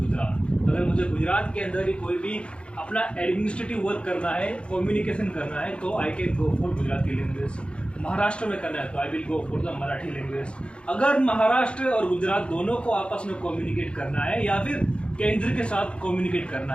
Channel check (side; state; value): right; late; 0.057 ms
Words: अगर मुझे गुजरात के अंदर ही कोई भी अपना एडमिनिस्ट्रेटिव वर्क करना है, कम्युनिकेशन करना है, तो I can go for Gujarati language. Maharashtra में करना है तो I will go for the Marathi language. अगर महाराष्ट्र और गुजरात दोनों को आपस में कम्युनिकेट करना है या फिर केंद्र के साथ कम्युनिकेट करना